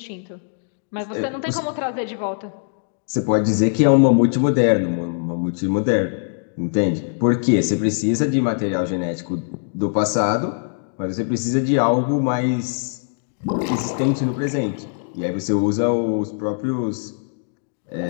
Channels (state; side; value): silent; right; digital silence